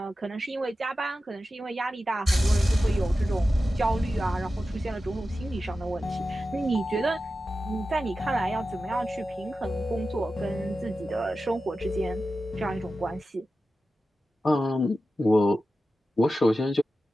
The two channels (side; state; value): both; normal; correlation 0.93